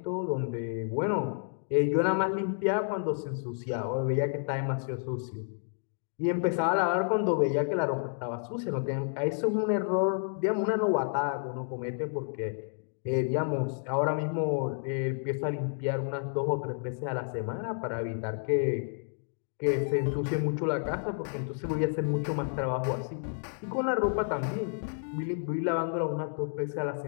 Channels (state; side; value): silent; right; digital silence